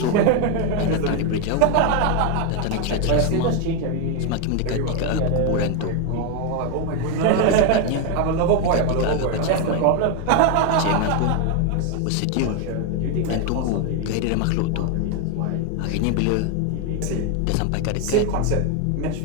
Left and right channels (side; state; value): both; different; correlation 0.01